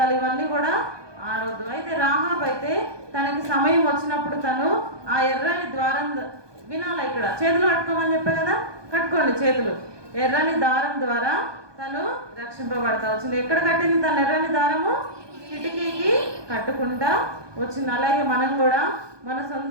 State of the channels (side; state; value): left; late; 1.2 ms